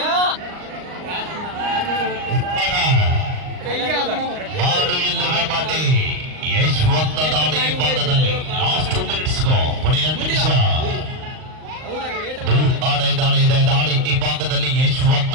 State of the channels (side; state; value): left; late; 39 ms